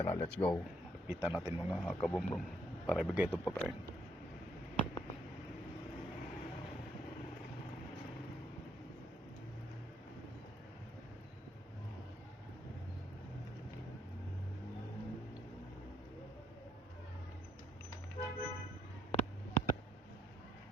Let's go. Lupitan natin mga kabrum-brum para ibigay itong pagkain.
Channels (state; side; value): normal; both; correlation 0.71